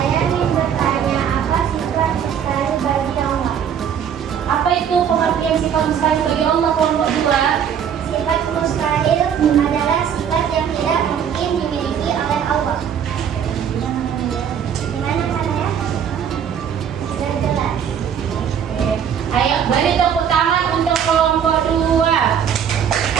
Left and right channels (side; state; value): left; quieter; 8.3 dB